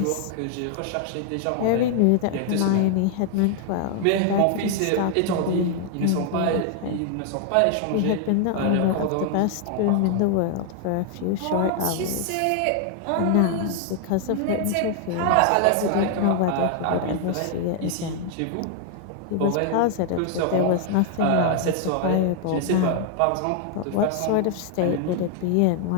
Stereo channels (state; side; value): different; both; correlation 0.00